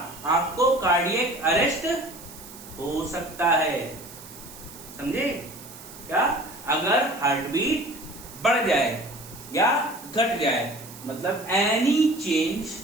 आपको कार्डियक अरेस्ट हो सकता है। समझे क्या, अगर हार्ट बीट बढ़ जाए या घट जाए, मतलब any change,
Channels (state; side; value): noise; right; hiss, 17 dB below the sound